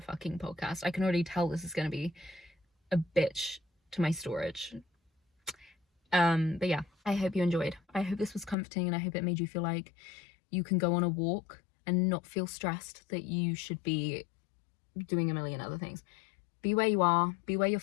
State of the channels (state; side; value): drops out; right; at 8.6 s